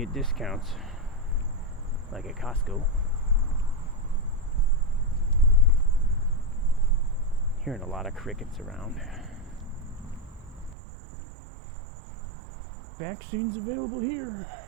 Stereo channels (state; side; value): drops out; left; at 10.8 s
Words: discounts. like at Costco. Hearing a lot of crickets around. Vaccines available here.